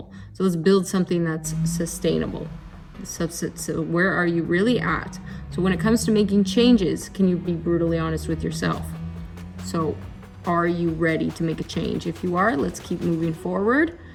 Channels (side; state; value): both; identical; correlation 1.00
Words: So let's build something that's sustainable. So where are you really at? So when it comes to making changes, can you be brutally honest with yourself? So are you ready to make a change? If you are, let's keep moving forward,